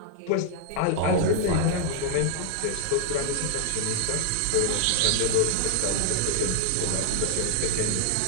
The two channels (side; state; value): both; different; correlation 0.00